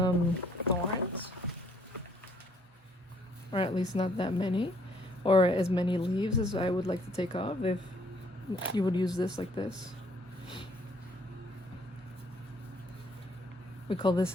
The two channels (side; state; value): both; normal; correlation 0.64